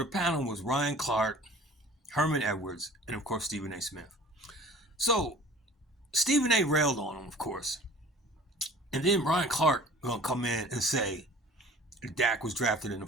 panel was Ryan Clark, Herman Edwards, and of course, Stephen A. Smith. So, Stephen A. railed on him, of course. And then Ryan Clark gonna come in and say Dak was drafted in the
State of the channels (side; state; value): both; normal; correlation 0.45